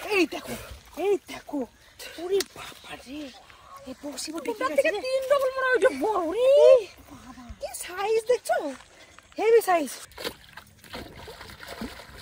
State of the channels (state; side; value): identical; both; correlation 1.00